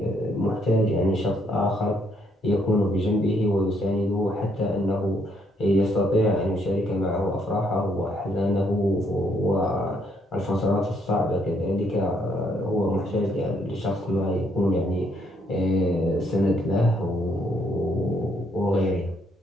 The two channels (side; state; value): both; normal; correlation 0.71